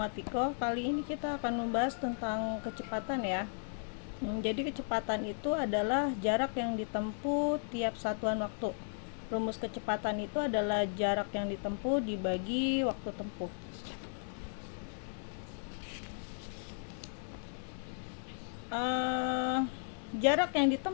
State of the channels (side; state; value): right; silent; digital silence